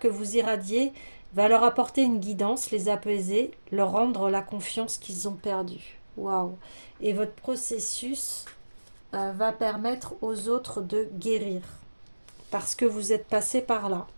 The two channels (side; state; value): both; inverted; correlation -1.00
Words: vous irradiez va leur apporter une guidance, les apaiser, leur rendre la confiance qu'ils ont perdue. Waouh! Et votre processus va permettre aux autres de guérir parce que vous êtes passé par là